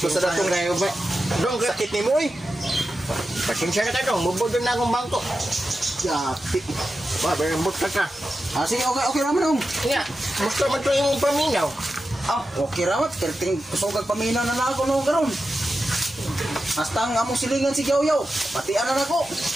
sa datong kayo ba? Dong, sakit ni mo eh. Pasensya na ka dong, mubodon na akong bangko. Yapi. Ba, berembot ka ka. Sige, okay naman om. Nga, musta man ito yung paminaw. Okay ramat. Kerting kusogag paminaw na ako no karon. Hasta ang among silingan si Yaw. Pati anan ako.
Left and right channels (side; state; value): both; normal; correlation 0.91